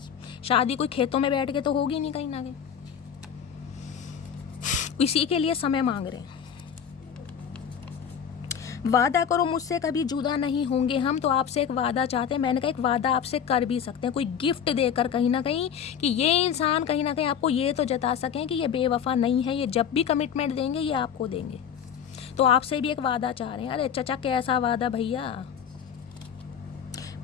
शादी कोई खेतों में बैठ के तो होगी नहीं कहीं ना कहीं, इसी के लिए समय मांग रहे हैं। वादा करो मुझसे कभी जुदा नहीं होंगे हम, तो आपसे एक वादा चाहते हैं। मैंने कहा एक वादा आपसे कर भी सकते हैं, कोई गिफ्ट देकर कहीं ना कहीं, कि ये इंसान कहीं ना कहीं आपको ये तो जता सकें कि ये बेवफा नहीं है। ये जब भी कमिटमेंट देंगे ये आपको देंगे। तो आपसे भी एक वादा चाह रहे हैं। अरे चचा कैसा वादा भैया,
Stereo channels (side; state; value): right; quieter; 8.0 dB